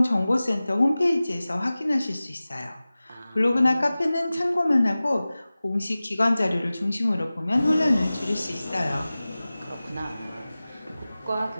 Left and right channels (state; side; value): inverted; both; correlation -0.97